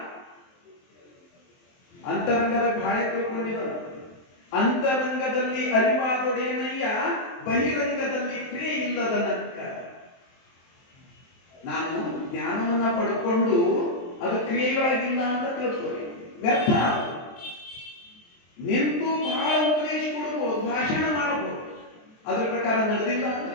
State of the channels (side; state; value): right; late; 23 ms